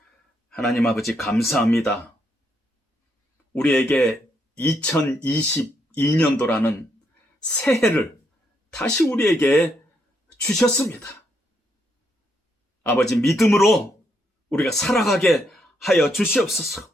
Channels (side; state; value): both; normal; correlation 0.76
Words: 하나님 아버지 감사합니다. 우리에게 2022년도라는 새해를 다시 우리에게 주셨습니다. 아버지 믿음으로 우리가 살아가게 하여 주시옵소서.